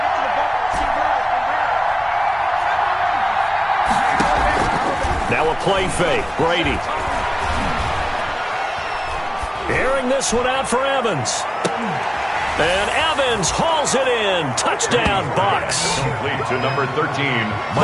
Now a play fake. Brady. Airing this one out for Evans. And Evans hauls it in. Touchdown, Bucs. Complete to number 13.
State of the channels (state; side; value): identical; both; correlation 1.00